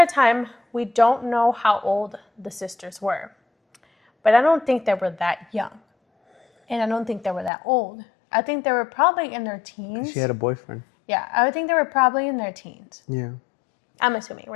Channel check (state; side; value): drops out; right; at 7.5 s